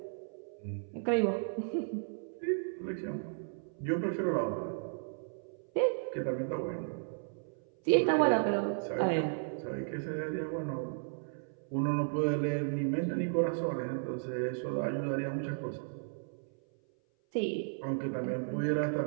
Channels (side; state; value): left; silent; 55 dB below the other